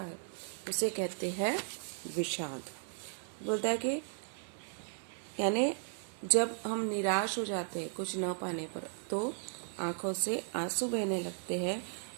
उसे कहते हैं विषाद। बोलता है कि यानी जब हम निराश हो जाते हैं कुछ न पाने पर तो आंखों से आंसू बहने लगते हैं,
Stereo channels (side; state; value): left; silent; 54 dB below the other